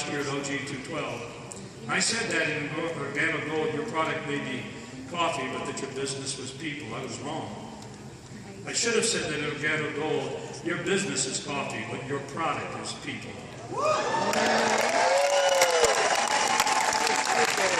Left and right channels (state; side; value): identical; both; correlation 1.00